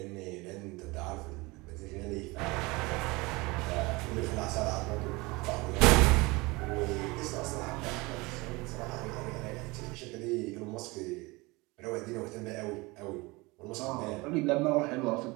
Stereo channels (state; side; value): quieter; left; 23.9 dB